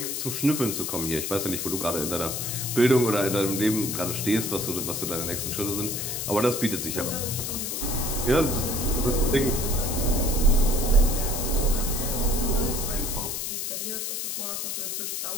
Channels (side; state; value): left; noise; hiss, 3 dB below the sound